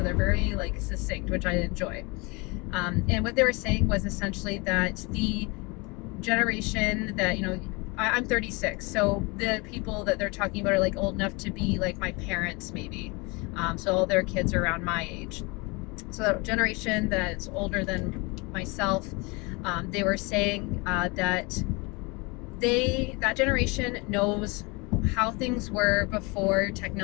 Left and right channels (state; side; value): quieter; right; 27.3 dB